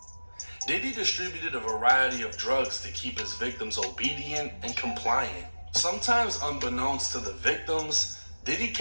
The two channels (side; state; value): both; inverted; correlation -1.00